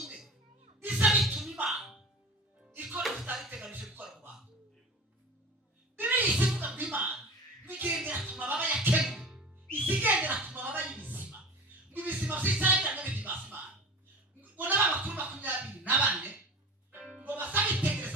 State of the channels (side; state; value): both; normal; correlation 0.35